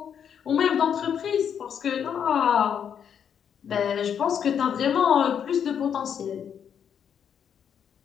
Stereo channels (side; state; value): right; quieter; 8.1 dB